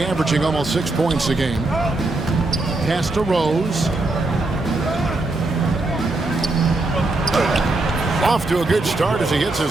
averaging almost 6 points a game. Pass to Rose. Off to a good start as he hits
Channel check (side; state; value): left; quieter; 3.0 dB